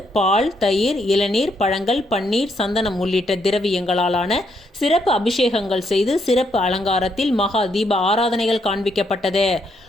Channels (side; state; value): both; normal; correlation 0.75